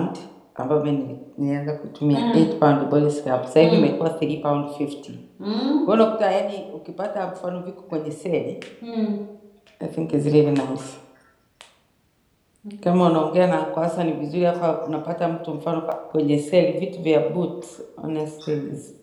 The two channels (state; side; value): identical; both; correlation 1.00